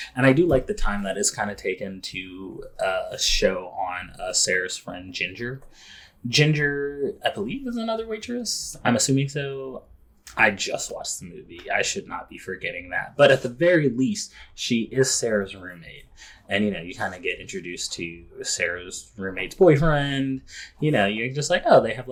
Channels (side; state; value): both; identical; correlation 1.00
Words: and I do like the time that is kind of taken to show on Sarah's friend Ginger. Ginger, I believe, is another waitress. I'm assuming so. I just watched the movie. I should not be forgetting that. But at the very least, she is Sarah's roommate. And, you know, you kind of get introduced to Sarah's roommate's boyfriend. You know, you're just like, oh, they have